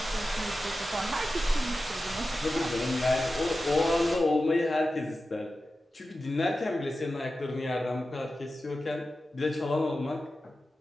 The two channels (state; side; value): normal; both; correlation 0.93